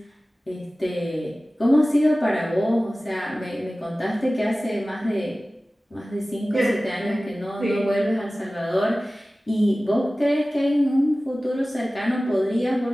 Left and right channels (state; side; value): normal; both; correlation 0.97